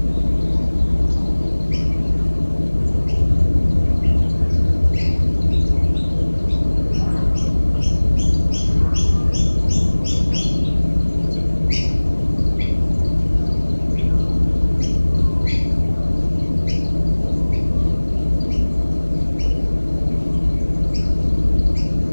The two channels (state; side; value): inverted; both; correlation -1.00